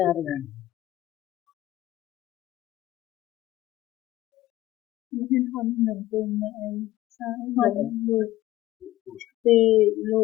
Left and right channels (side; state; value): right; quieter; 15.8 dB